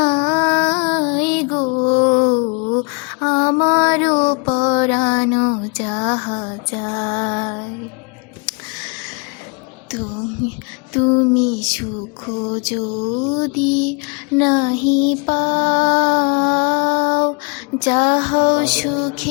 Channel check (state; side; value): quieter; right; 34.1 dB